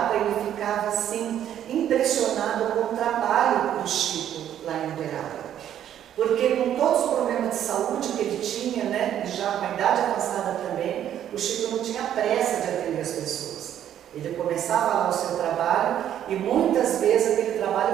ele ficava assim, impressionado com o trabalho do Chico lá em Uberaba. Porque com todos os problemas de saúde que ele tinha, né, e já com a idade avançada também, o Chico não tinha pressa de atender as pessoas. Ele começava lá o seu trabalho e muitas vezes aquele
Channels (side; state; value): left; quieter; 10.6 dB